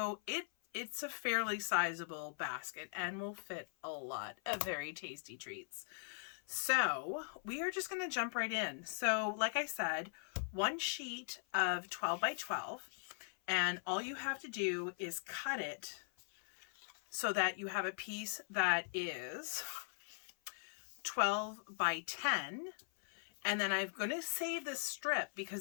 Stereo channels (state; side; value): silent; right; 51 dB below the other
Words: it's a fairly sizable basket and will fit a lot of very tasty treats. So we are just going to jump right in. So like I said, one sheet of 12 by 12. And all you have to do is cut it so that you have a piece that is 12 by 10. And then I'm going to save this strip